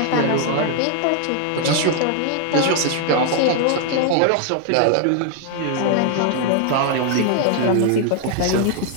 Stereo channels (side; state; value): both; different; correlation 0.00